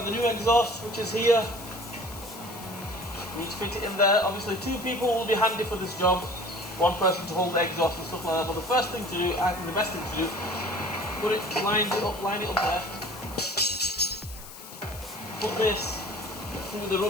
the new exhaust, which is here. We need to fit it in there. Obviously 2 people will be handy for this job. 1 person to hold the exhaust and stuff like that. But the first thing to do, I think the best thing to do, line it up there. Put this through the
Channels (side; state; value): left; noise; hiss, 15 dB below the sound